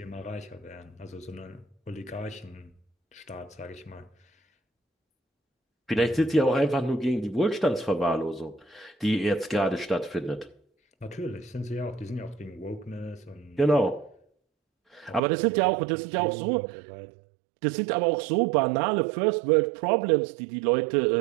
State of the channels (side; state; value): left; drops out; at 15.2 s